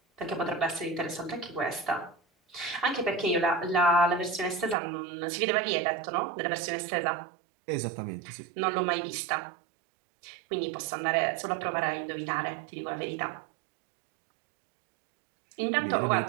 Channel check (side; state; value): left; drops out; at 4.8 s